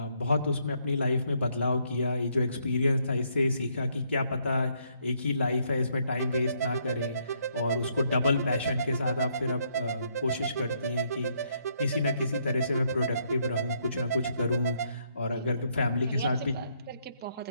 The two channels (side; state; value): both; inverted; correlation -0.72